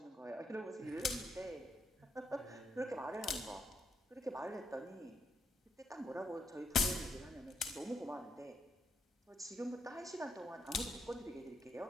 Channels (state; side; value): normal; both; correlation 0.78